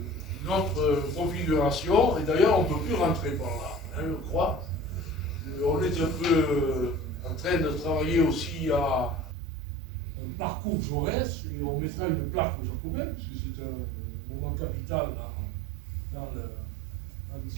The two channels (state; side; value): drops out; left; at 9.3 s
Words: notre configuration, et d'ailleurs on ne peut plus rentrer par là, hein, je crois. On est un peu en train de travailler aussi à un parcours Jaurès, et on mettra une plaque aux Jacobins, puisque c'est un moment capital dans